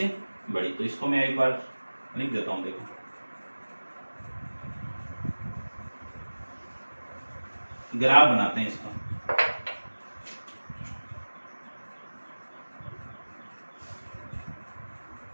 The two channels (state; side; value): inverted; both; correlation -1.00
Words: बड़ी, तो इसको मैं एक बार लिख देता हूं। देखो ग्राफ बनाते हैं इसका।